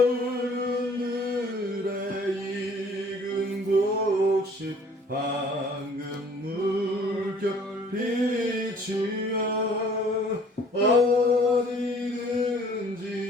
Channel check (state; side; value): normal; both; correlation 0.55